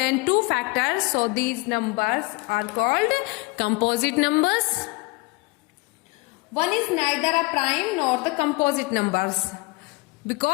2 factors. So these numbers are called composite numbers. 1 is neither a prime nor the composite numbers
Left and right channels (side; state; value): right; quieter; 25.0 dB